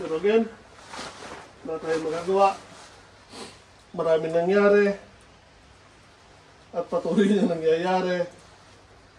again, wala tayong magagawa. Maraming nangyari. At patuloy na nangyayari.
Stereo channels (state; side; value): identical; both; correlation 1.00